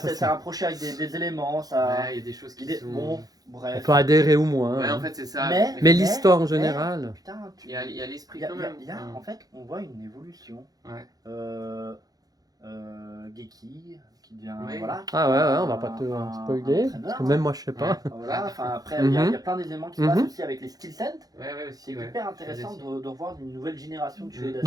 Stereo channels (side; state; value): left; late; 0.18 ms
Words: c'est c'est- rapproché avec des éléments, ça. Ouais, il y a des choses qui il est- sont. bon, On bref. peut adhérer ou moins. Ouais, hein. en fait, c'est ça. Mais l'histoire en général. Putain, Il y a l'esprit il y a- quand il y a- même. il y a- en fait, on voit une évolution. Ouais. Geki, qui devient. Oui. Voilà, Ah ouais, on va pas te un spoiler, entraîneur, parce que même moi je sais pas. Voilà, enfin, après, il y a plein d'éléments qui se passent Mhm. aussi avec les skill sets. Ouais, ouais, C'est aussi. Ouais. hyper intéressant de revoir une nouvelle génération de Shueisha.